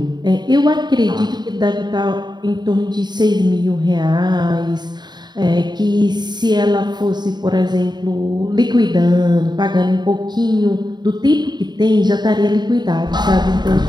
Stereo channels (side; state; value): left; late; 0.21 ms